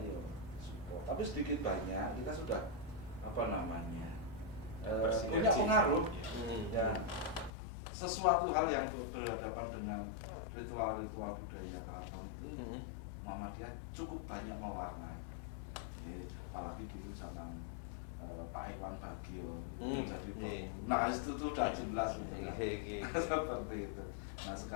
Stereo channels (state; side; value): drops out; right; at 7.5 s